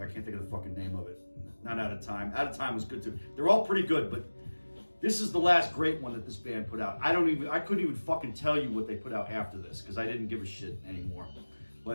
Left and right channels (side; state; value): both; inverted; correlation -1.00